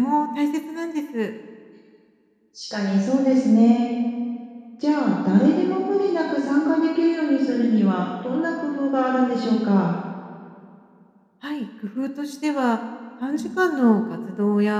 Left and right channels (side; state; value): both; identical; correlation 1.00